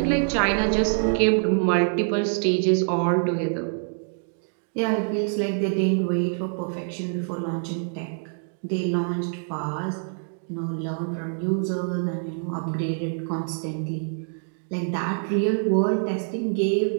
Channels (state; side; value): silent; left; digital silence